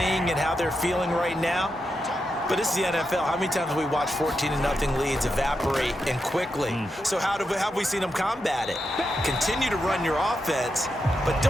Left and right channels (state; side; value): normal; both; correlation 0.86